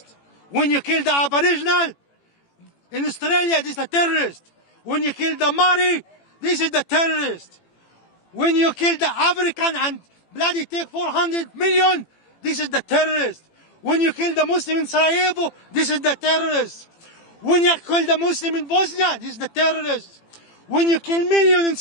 When you kill the Aboriginal in Australia, this is the terrorist. When you kill the Maori, this is the terrorist. When you kill the African and bloody take 400 million, this is the terrorist. When you kill the Muslim in Sarajevo, this is the terrorist. When you kill the Muslim in Bosnia, this is the terrorist. When you kill million in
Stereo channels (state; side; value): late; right; 18 ms